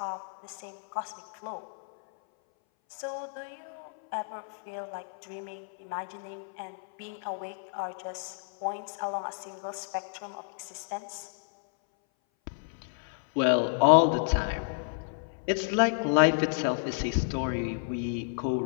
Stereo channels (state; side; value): silent; right; 57 dB below the other